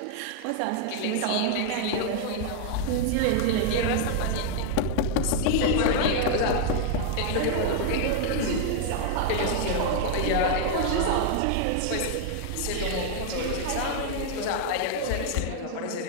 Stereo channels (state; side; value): different; both; correlation 0.00